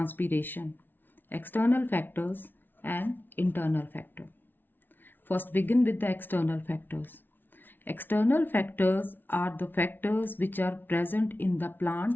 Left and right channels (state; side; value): late; right; 0.095 ms